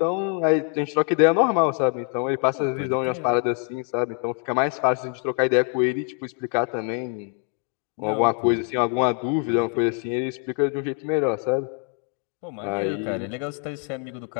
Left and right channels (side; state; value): right; quieter; 36.4 dB